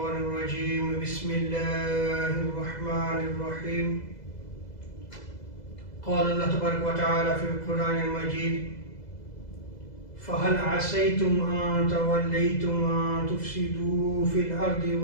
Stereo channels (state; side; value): late; right; 2.0 ms